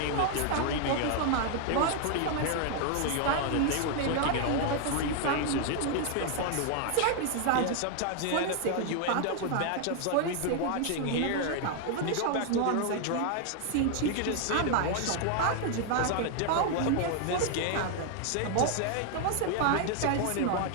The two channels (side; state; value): both; different; correlation 0.00